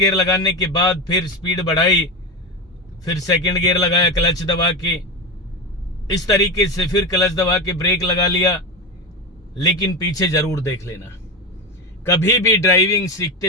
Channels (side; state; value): both; normal; correlation 0.18